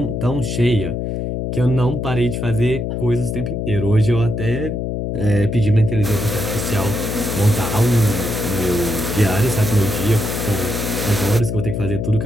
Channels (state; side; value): noise; left; hum, 2 dB below the sound